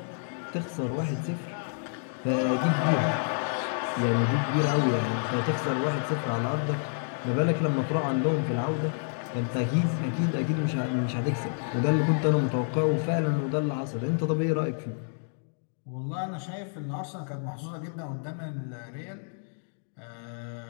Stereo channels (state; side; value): silent; right; digital silence